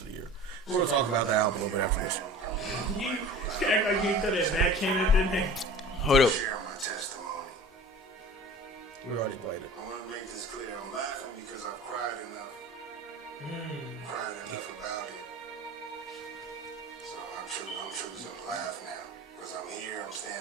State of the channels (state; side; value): normal; both; correlation 0.40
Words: the year. We're going to talk about the album a little bit after this. Hold up. Share my testimony. We already played it. I want to make this clear. I'm laughing because I've cried enough. Cried enough about it. So I'm choosing to laugh now because I'm here. I'm